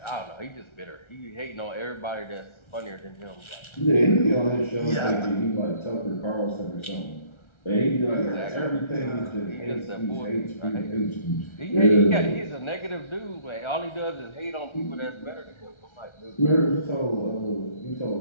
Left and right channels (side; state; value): right; late; 1.3 ms